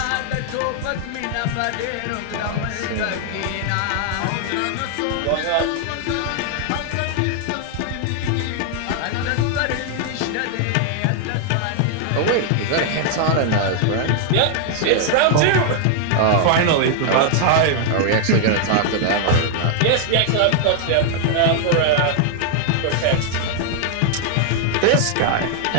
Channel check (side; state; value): both; different; correlation 0.00